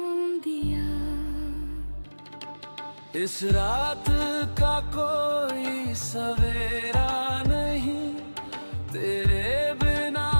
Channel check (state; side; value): inverted; both; correlation -1.00